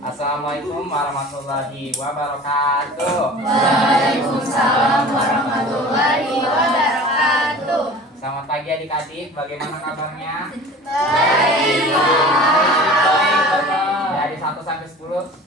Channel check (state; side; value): normal; both; correlation 0.41